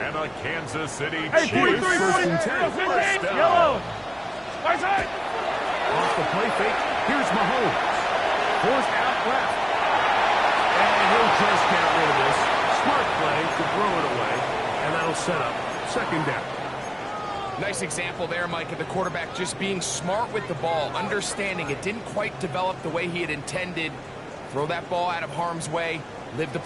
And a Kansas City Chiefs first and 10. First down. Yellow. Off the play fake, here's Mahomes. Forced out left. And he'll just get rid of this. Smart play to throw it away. And that'll set up second down. Nice example there, Mike, of the quarterback just being smart with the ball, understanding it didn't quite develop the way he had intended. Throw that ball out of harm's way, live to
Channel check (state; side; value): identical; both; correlation 1.00